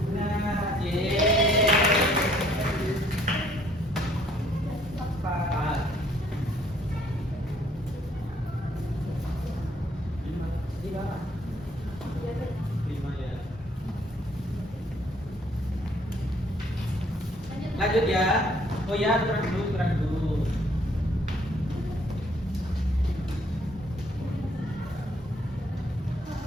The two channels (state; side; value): normal; both; correlation 0.63